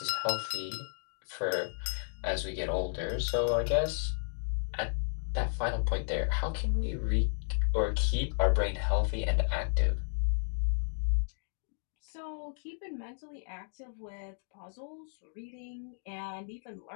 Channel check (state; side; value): silent; right; digital silence